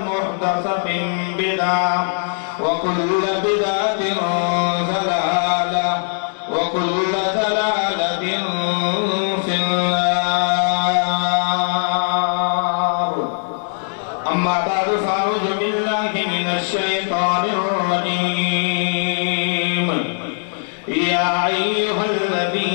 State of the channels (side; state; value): right; silent; 61 dB below the other